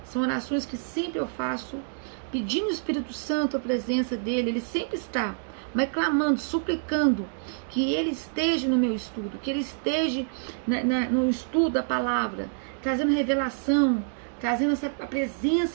São orações que sempre eu faço, pedindo ao Espírito Santo a presença dele. Ele sempre está, mas clamando, suplicando que ele esteja no meu estudo, que ele esteja no estudo da palavra, trazendo revelação, trazendo a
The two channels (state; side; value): silent; left; digital silence